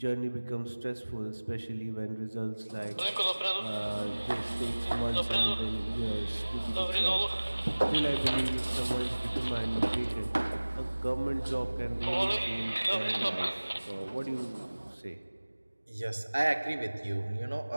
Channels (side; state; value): both; inverted; correlation -1.00